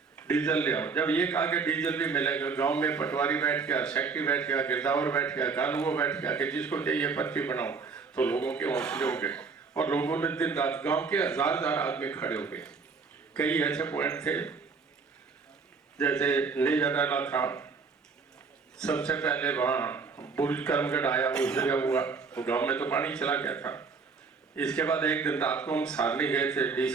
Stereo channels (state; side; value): quieter; left; 4.9 dB